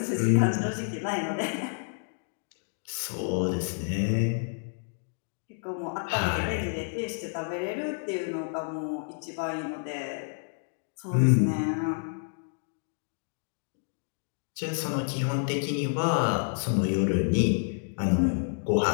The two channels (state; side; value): silent; right; digital silence